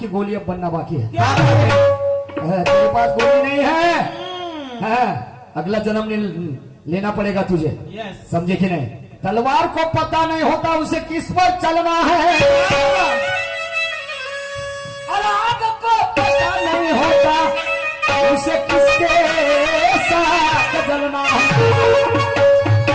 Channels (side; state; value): both; identical; correlation 1.00